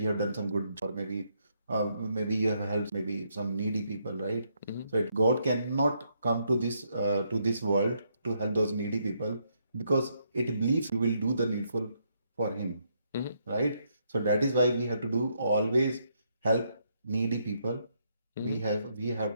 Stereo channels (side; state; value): both; inverted; correlation -0.75